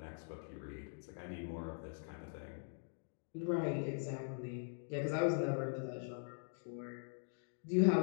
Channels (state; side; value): silent; right; digital silence